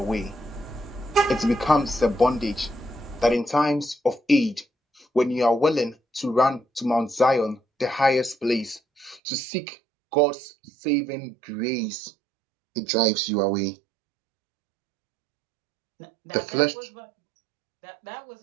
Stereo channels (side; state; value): left; drops out; at 9.2 s